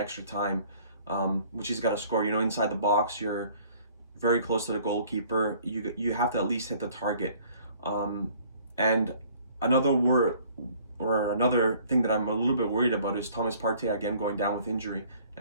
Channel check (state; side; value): inverted; both; correlation -0.55